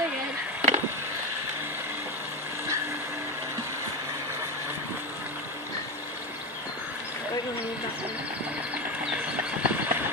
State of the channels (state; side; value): normal; both; correlation 0.15